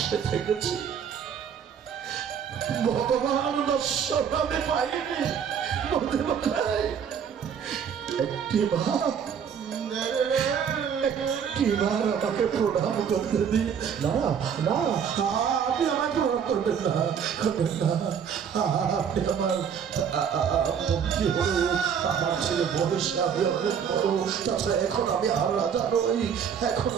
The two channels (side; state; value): left; quieter; 7.6 dB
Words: থেকেছি, ভগবান দর্শন আমি পাইনি। একটিবার আমাকে প্রণাম করতে দিন। না না, আপনি আমায় প্রণাম করবেন না, করবেন না। আপনি আমার মন্ত্রী হলো, আমার ছেলে বয়সে আমি অনেক বড়। তাছাড়া এখন আমি আর রাজা নই, এখন